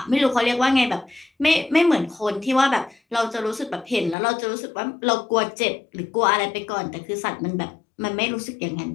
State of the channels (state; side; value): drops out; right; at 4.2 s